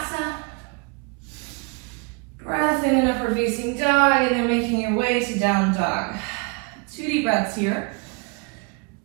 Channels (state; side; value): quieter; left; 31.0 dB